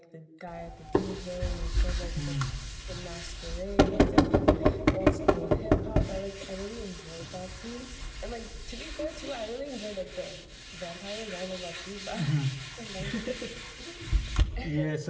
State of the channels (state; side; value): identical; both; correlation 1.00